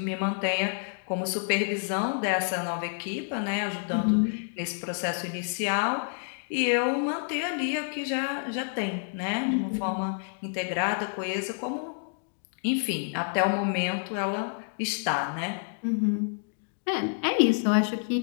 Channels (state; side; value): silent; right; digital silence